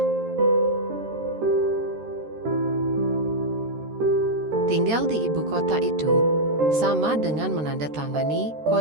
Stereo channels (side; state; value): left; late; 13 ms